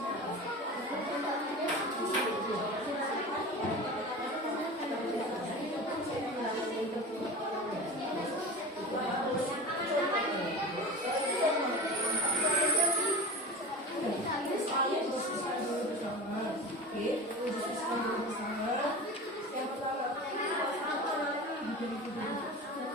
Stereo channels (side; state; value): both; normal; correlation 0.32